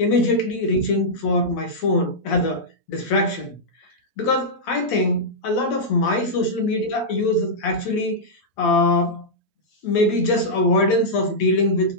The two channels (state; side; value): late; right; 8.6 ms